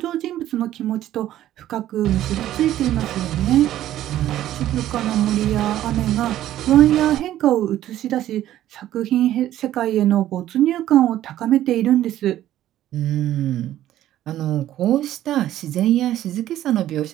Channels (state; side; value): quieter; left; 12.9 dB